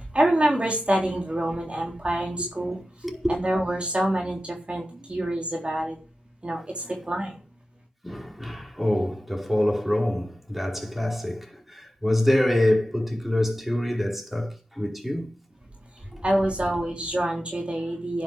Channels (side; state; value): both; normal; correlation 0.93